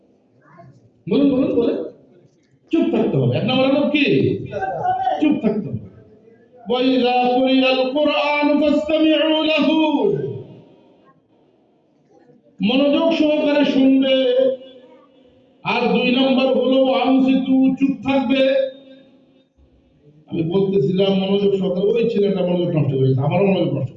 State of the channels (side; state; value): both; identical; correlation 1.00